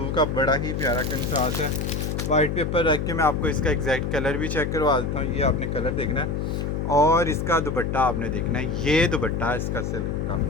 का बड़ा ही प्यारा कंट्रास्ट है। वाइट पेपर रख के मैं आपको इसका एग्जैक्ट कलर भी चेक करवा देता हूँ। ये आपने कलर देखना है और इसका दुपट्टा आपने देखना है। ये दुपट्टा है इसका सिल्क का,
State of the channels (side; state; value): left; noise; hum, 1 dB below the sound